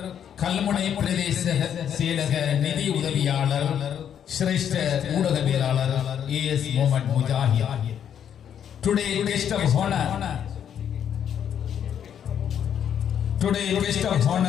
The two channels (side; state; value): right; quieter; 9.0 dB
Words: கல்முனை பிரதேச செயலக நிதி உதவியாளர் சிரேஷ்ட ஊடகவியலாளர் A.S. Mohammed Mujahid. Today guest of